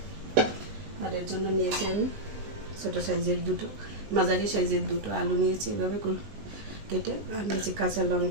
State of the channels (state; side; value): late; left; 19 ms